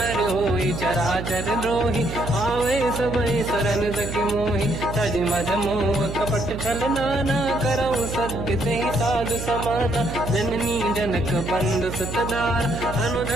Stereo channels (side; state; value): right; noise; hum, 7 dB below the sound